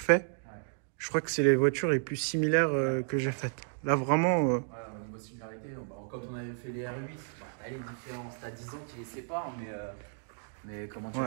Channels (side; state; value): left; silent; 56 dB below the other